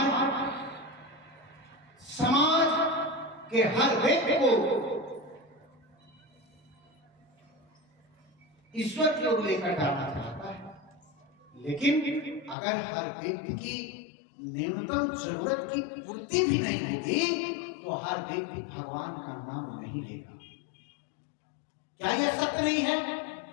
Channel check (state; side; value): drops out; right; at 12.6 s